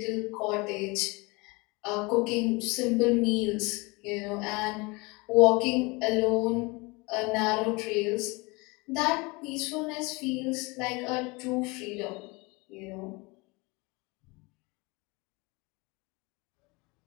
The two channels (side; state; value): right; quieter; 26.1 dB